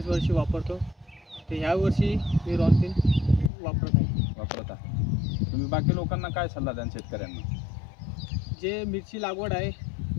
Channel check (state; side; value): drops out; right; at 3.5 s